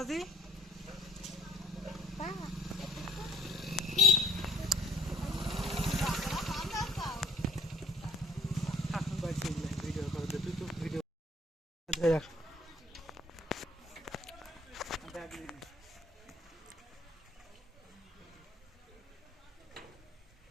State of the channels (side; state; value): both; normal; correlation 0.59